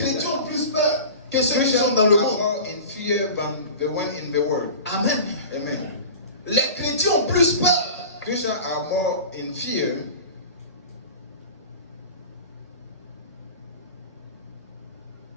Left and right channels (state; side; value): inverted; both; correlation -0.36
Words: chrétiens that. ont plus peur que ceux qui Christians sont dans le are monde. more in fear than the one in the world. Amen. Amen. Les chrétiens ont plus peur. Christians are more in fear.